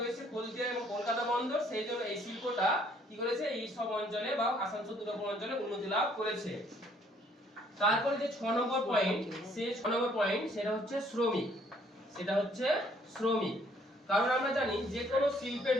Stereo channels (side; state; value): both; normal; correlation 0.63